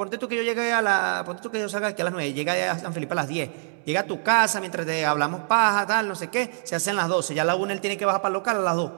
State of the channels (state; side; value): silent; left; digital silence